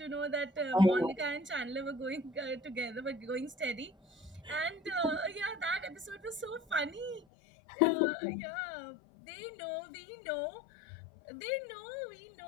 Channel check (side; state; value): right; drops out; at 7.2 s